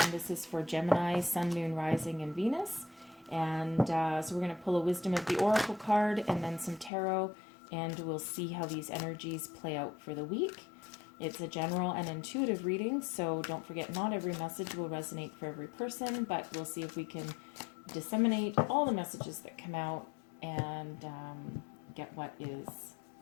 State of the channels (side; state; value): right; drops out; at 6.9 s